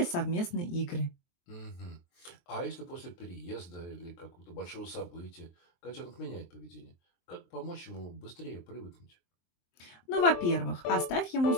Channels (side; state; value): right; late; 23 ms